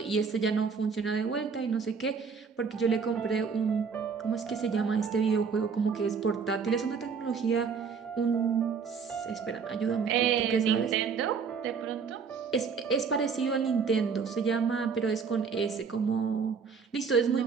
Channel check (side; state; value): left; quieter; 5.8 dB